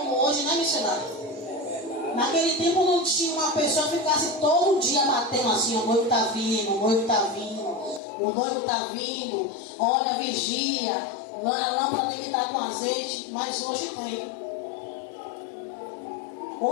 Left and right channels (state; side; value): drops out; right; at 8.0 s